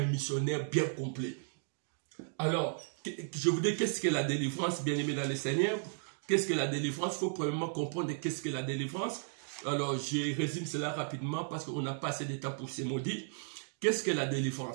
missionnaire bien complet. Alors, je vous dis qu'est-ce que la délivrance, bien aimé dans le Seigneur. Qu'est-ce que la délivrance? Il faut premièrement comprendre qu'est-ce que la délivrance. Alors, je résume cela rapidement parce qu'on n'a pas assez de temps pour se maudire. Qu'est-ce que la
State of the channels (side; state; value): left; silent; digital silence